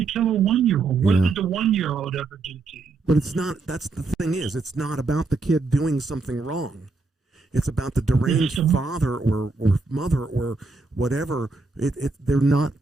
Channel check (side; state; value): left; quieter; 3.7 dB